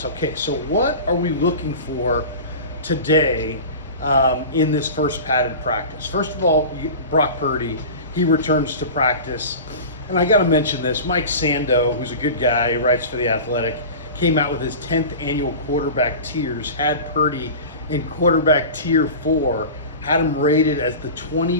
Okay, so what are we looking for today in this first padded practice? First of all, Brock Purdy, he returns to practice, and I got to mention this. Mike Sando, who's a good guy, he writes for The Athletic, came out with his 10th annual quarterback tiers, had Purdy in quarterback tier 4, had him rated as the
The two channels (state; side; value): inverted; both; correlation -0.33